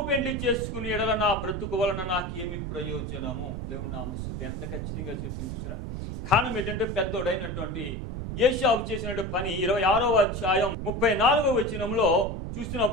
పెళ్లి చేసుకుని ఎడల నా బ్రతుకు వలన నాకేమి ప్రయోజనము. దేవుని నామ స్తుతి. ఎంత ఖచ్చితంగా చెప్పింది చూసారా. కారణం ఏంటంటే పెద్దోడైనటువంటి ఏశావు చేసినటువంటి పని 26వ అధ్యాయం 34వ వచనంలో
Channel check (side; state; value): right; noise; rumble, 5 dB below the sound